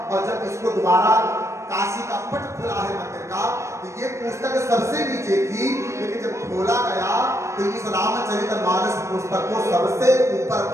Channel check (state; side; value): late; left; 0.14 ms